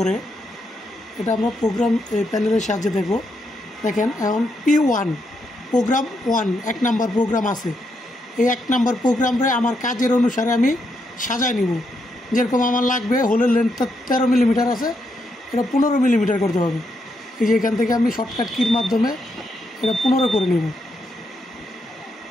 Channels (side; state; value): both; normal; correlation 0.79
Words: এটা আমরা প্রোগ্রাম প্যানেলের সাহায্যে দেখব। দেখেন এখন P1 প্রোগ্রাম 1 1 নাম্বার প্রোগ্রাম আছে। এই 1 নাম্বার প্রোগ্রামে আমার কাজের অনুসারে আমি সাজায় নিব। যেরকম আমার লাগবে হোলের লেন্থটা 13 মিলিমিটার আছে, এটা 15 মিলিমিটার করতে হবে। এই যে এখান থেকে আমি শর্টকাট কির মাধ্যমে এটা 15 করে নিব।